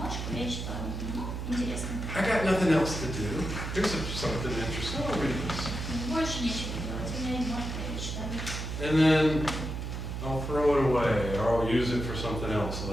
я читаю. Ну, интересно. I got nothing else to do. Here's something interesting. I'll read this. Больше нечего делать, у меня есть бумажка, я ее читаю. And then I'll throw it away, or I'll use it for something else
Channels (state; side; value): noise; right; hum, 5 dB below the sound